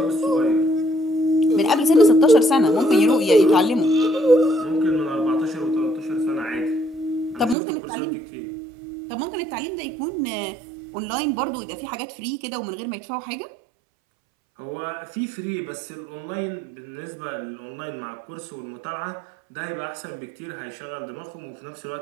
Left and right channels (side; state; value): left; drops out; at 7.6 s